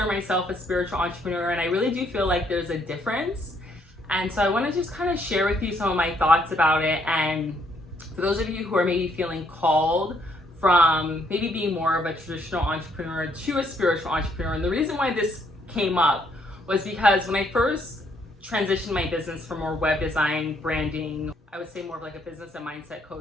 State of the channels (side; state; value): both; normal; correlation 0.70